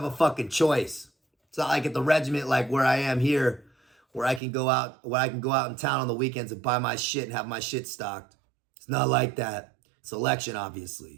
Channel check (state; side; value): drops out; left; at 4.4 s